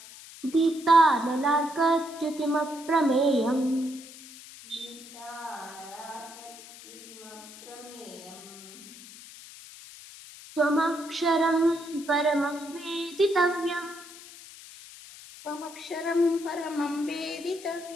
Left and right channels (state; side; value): noise; left; hiss, 17 dB below the sound